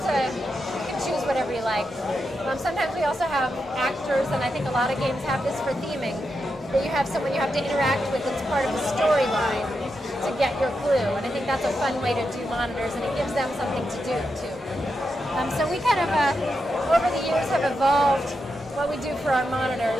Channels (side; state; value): both; normal; correlation 0.86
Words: can choose whatever you like. Sometimes we also have actors, and I think a lot of games have this for theming, that you have someone you have to interact with that's part of the storyline to get your clue. And I think that's a fun way to do monitors, and it gives them something to do too. So we kind of, over the years, have evolved what we do for our